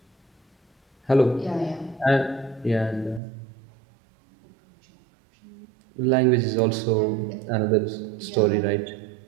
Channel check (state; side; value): drops out; left; at 3.2 s